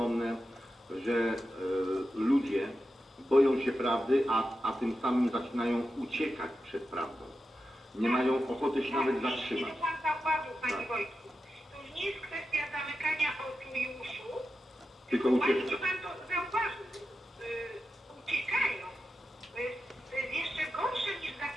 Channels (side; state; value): both; normal; correlation 0.90